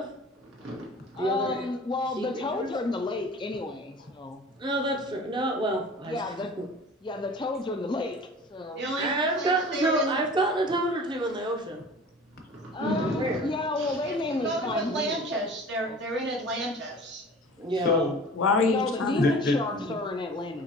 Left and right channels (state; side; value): normal; both; correlation 0.42